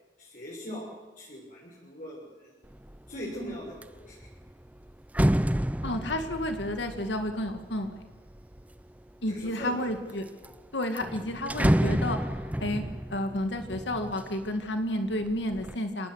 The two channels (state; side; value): normal; both; correlation 0.69